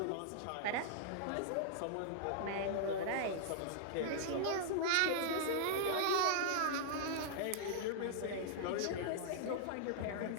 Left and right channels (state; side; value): different; both; correlation -0.01